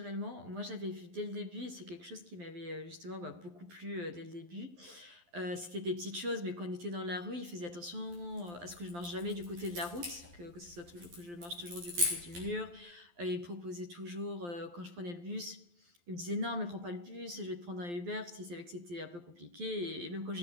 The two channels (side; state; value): left; late; 12 ms